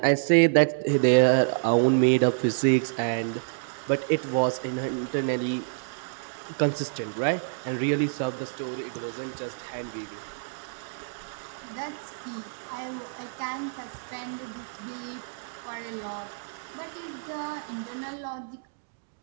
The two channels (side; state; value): left; silent; digital silence